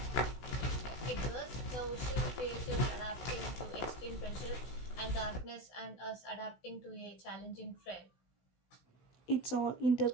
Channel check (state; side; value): late; right; 16 ms